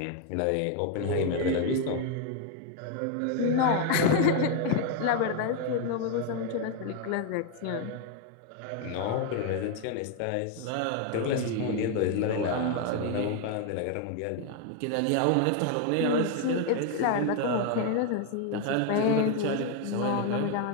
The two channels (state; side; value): different; both; correlation 0.01